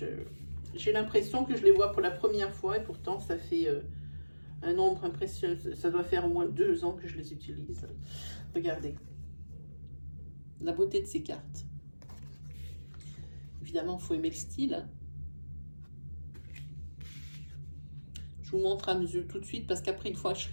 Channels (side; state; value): both; inverted; correlation -1.00